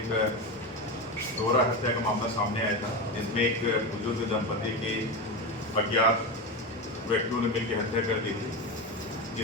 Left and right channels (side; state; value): both; normal; correlation 0.18